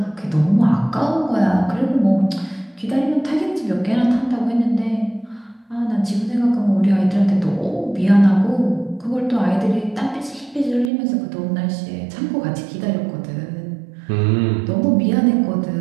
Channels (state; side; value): drops out; left; at 10.9 s